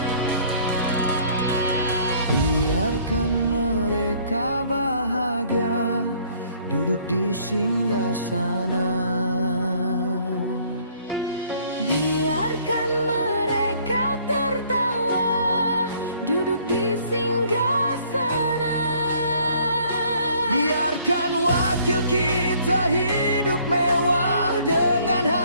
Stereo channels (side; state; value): both; inverted; correlation -0.60